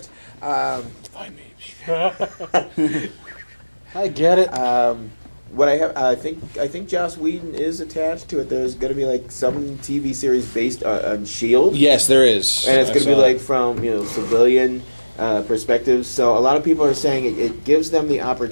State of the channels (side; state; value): both; inverted; correlation -1.00